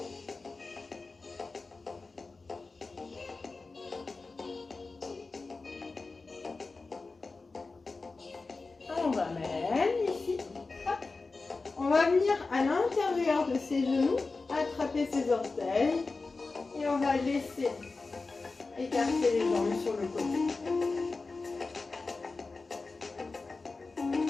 On va mettre ici. Hop. On va venir à l'intérieur de ses genoux, attraper ses orteils et on va laisser écarter les jambes sur le côté.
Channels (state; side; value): quieter; right; 3.8 dB